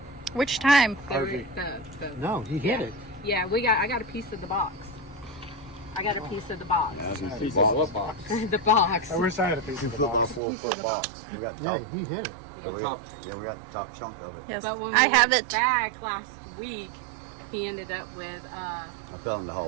Which time? RV. No, he hit Yeah. it. Yeah, I got a piece of the box. I got a piece of the box. Yeah, I was gonna say Piece of box. what box? The box. I wish I had a piece of the Football box. full foot box. We got Yeah, top. he hit it. Yeah. We got the top chunk of it. Yes. But when we I have went it. back last week, he ended up with I fell in the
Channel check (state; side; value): drops out; left; at 10.4 s